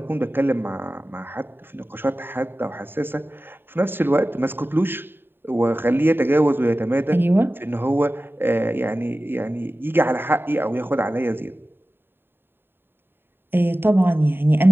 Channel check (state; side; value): late; left; 0.10 ms